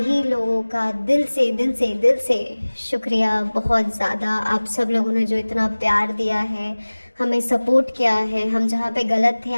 लोगों का दिल से शुक्रिया, बहुत ज़्यादा। आप सब लोगों ने जो इतना प्यार दिया है, हमें सपोर्ट किया है, हम जहाँ पे गलत थे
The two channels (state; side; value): inverted; both; correlation -1.00